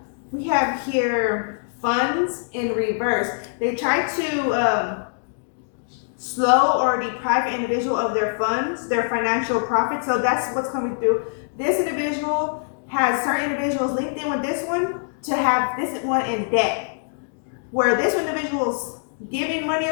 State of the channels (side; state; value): right; silent; digital silence